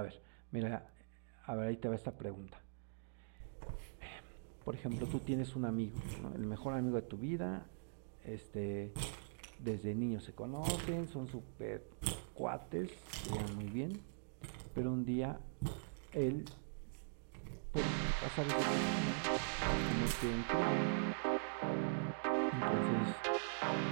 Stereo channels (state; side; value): silent; left; digital silence